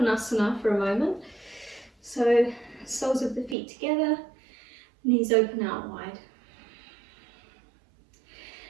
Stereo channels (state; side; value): drops out; left; at 3.6 s